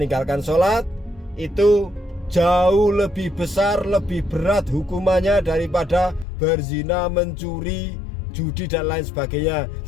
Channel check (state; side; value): drops out; right; at 6.2 s